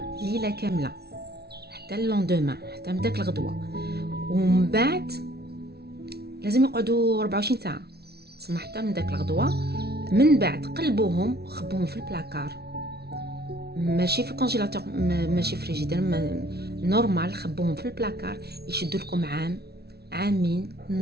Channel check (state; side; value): late; left; 0.47 ms